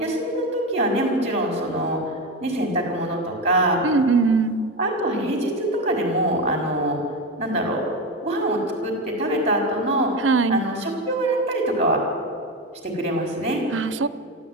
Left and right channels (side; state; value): both; normal; correlation 0.18